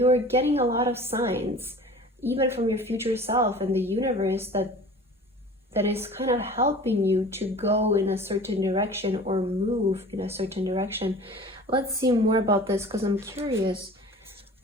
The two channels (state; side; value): normal; both; correlation 0.42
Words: getting a lot of signs, even from your future self and the universe, that is kind of helping you to go in a certain direction or move in a certain direction. Let's see more about this, because I'm curious